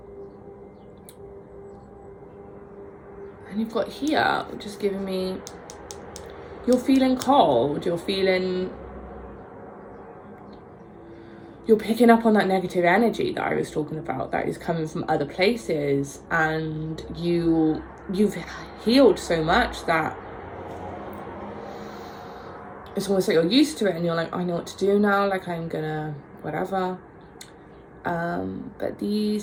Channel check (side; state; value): both; identical; correlation 1.00